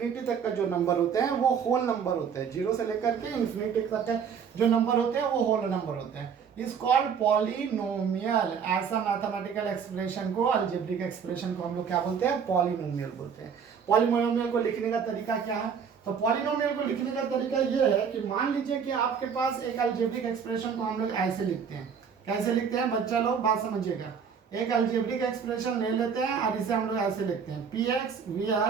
तक का जो नंबर होते हैं वो होल नंबर होते हैं। 0 से लेकर के इंफिनिटी तक का जो नंबर होते हैं वो होल नंबर होते हैं। Is called polynomial. ऐसा मैथमेटिकल एक्सप्रेशन को, अलजेब्रिक एक्सप्रेशन को हम लोग क्या बोलते हैं, पॉलिनोमियल बोलते हैं। पॉलिनोमियल को लिखने का तरीका क्या है, तो पॉलिनोमियल को लिखने का तरीका ये है कि मान लीजिए कि आपके पास एक अलजेब्रिक एक्सप्रेशन को हम लोग ऐसे लिखते हैं। कैसे लिखते हैं बच्चा लोग, बात समझिएगा। एक अलजेब्रिक एक्सप्रेशन ले लेते हैं और इसे हम लोग ऐसे लिखते हैं, P X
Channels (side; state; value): left; quieter; 6.8 dB